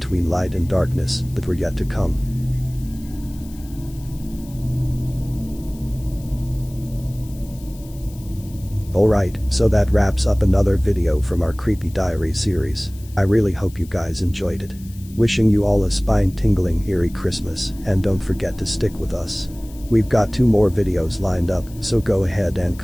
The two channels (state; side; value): noise; left; hiss, 23 dB below the sound